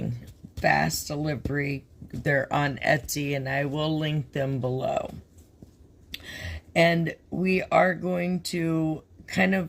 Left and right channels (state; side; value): identical; both; correlation 1.00